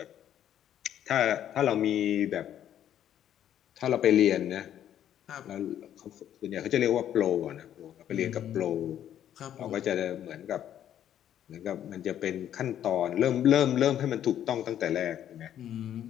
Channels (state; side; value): quieter; right; 10.7 dB